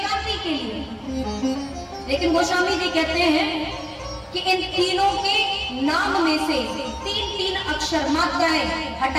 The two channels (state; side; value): identical; both; correlation 1.00